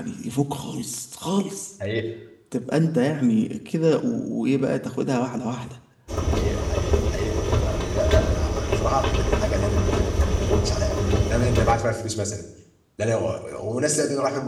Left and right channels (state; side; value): identical; both; correlation 1.00